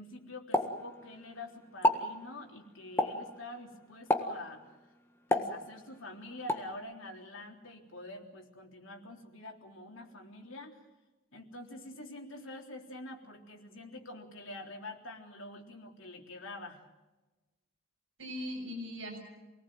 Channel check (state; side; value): normal; both; correlation 0.41